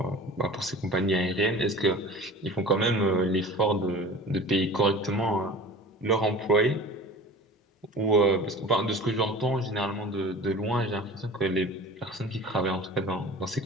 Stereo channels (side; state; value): both; normal; correlation 0.39